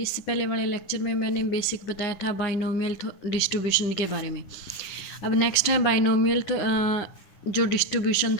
पहले वाले लेक्चर में मैंने बेसिक बताया था बाइनोमियल डिस्ट्रीब्यूशन के बारे में। अब नेक्स्ट है बाइनोमियल जो डिस्ट्रीब्यूशन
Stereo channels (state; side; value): late; right; 9.8 ms